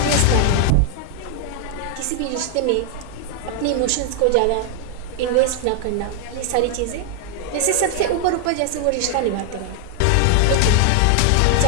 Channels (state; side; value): different; both; correlation 0.00